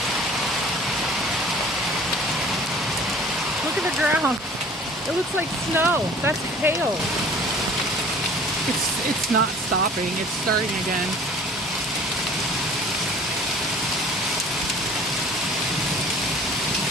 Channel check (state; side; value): normal; both; correlation 0.48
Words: Look at the ground. It looks like snow. That's hail. It's not stopping. It's starting again.